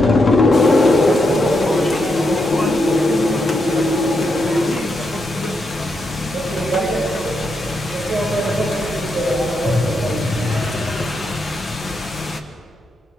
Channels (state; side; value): normal; both; correlation 0.82